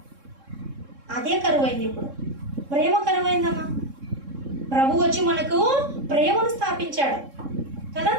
అదే కరువైంది ఇప్పుడు, ప్రేమ కరువైందమ్మా. ప్రభు వచ్చి మనకు ప్రేమను స్థాపించాడు కదా.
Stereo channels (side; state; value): left; late; 3.7 ms